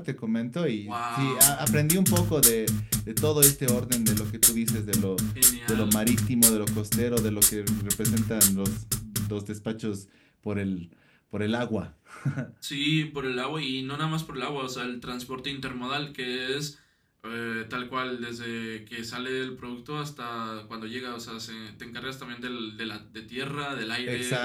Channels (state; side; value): identical; both; correlation 1.00